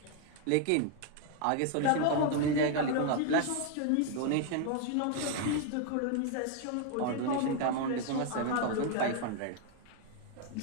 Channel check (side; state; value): both; different; correlation 0.01